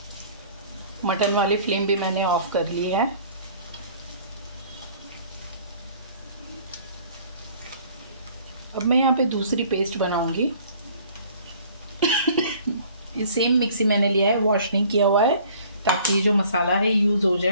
मटन वाली फ्लेम भी मैंने ऑफ कर ली है। अब मैं यहाँ पे दूसरी पेस्ट बनाऊंगी। ये सेम मिक्सी मैंने लिया है, वॉश नहीं किया हुआ है, ताकि ये जो मसाला है यूज हो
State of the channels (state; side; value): inverted; both; correlation -0.53